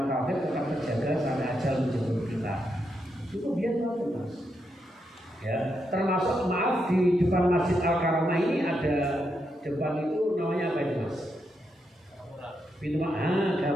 kafir tetap terjaga sampai ajal menjemput kita. Itu biar tahu Mas. Ya, termasuk maaf di depan Masjid Al-Karamah ini ada depan itu namanya apa itu Mas? Pintu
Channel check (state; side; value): normal; both; correlation 0.82